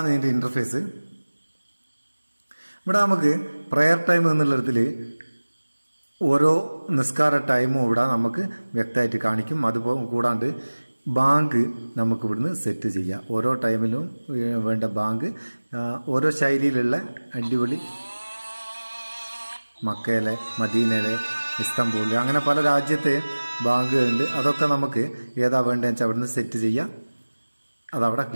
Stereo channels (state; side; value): inverted; both; correlation -1.00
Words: ഇതിൻ്റെ ഇൻ്റർഫേസ്. ഇവിടെ നമുക്ക് പ്രെയർ ടൈം എന്നുള്ളതിൽ ഓരോ നിസ്കാര ടൈമും ഇവിടെ നമുക്ക് വ്യക്തമായിട്ട് കാണിക്കും. അതുപോലെ കൂടാണ്ട് ബാങ്ക് നമുക്ക് ഇവിടുന്ന് സെറ്റ് ചെയ്യാം. ഓരോ ടൈമിലും വേണ്ട ബാങ്ക് ഓരോ ശൈലിയിലുള്ള അടിപൊളി മക്കയിലെ, മദീനയിലെ, ഇസ്താംബൂളിൽ, അങ്ങനെ പല രാജ്യത്തെ ബാങ്കുകളുണ്ട്. അതൊക്കെ നമുക്ക് ഏതാ വേണ്ടതെന്ന് വെച്ചാൽ അവിടുന്ന് സെറ്റ് ചെയ്യാം. അതവിടെ